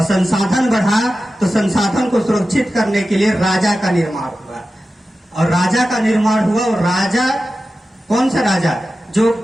संसाधन बढ़ा तो संसाधन को सुरक्षित करने के लिए राजा का निर्माण हुआ। और राजा का निर्माण हुआ, और राजा कौन सा राजा, जो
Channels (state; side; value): normal; both; correlation 0.93